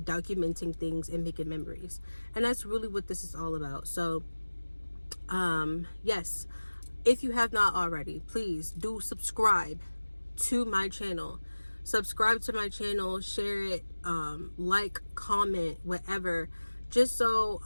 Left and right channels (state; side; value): inverted; both; correlation -1.00